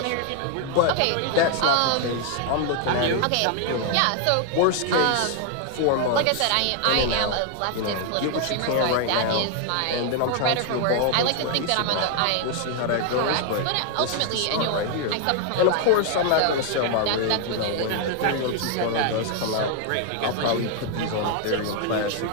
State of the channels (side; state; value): both; different; correlation 0.00